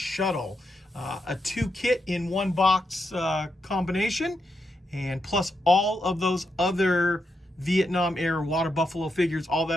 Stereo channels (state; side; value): normal; both; correlation 0.83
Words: A 2-kit in 1 box combination, and plus all of those other Vietnam era water buffalo figures, all